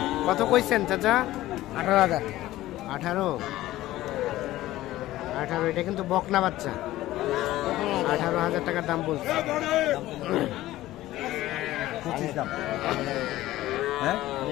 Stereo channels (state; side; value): quieter; right; 15.8 dB